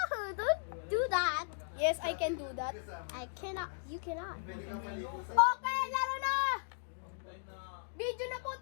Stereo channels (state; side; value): silent; right; digital silence